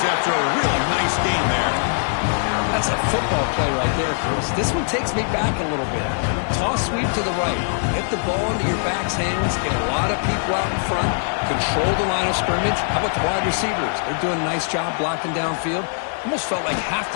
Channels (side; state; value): right; silent; digital silence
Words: after a really nice game there. That's a football play right there, Chris. This one takes me back a little bit. Toss sweep to the right. Get the ball into your back's hands. Get a lot of people out in front. Control the line of scrimmage. How about the wide receivers? They're doing a nice job blocking downfield. Almost felt like half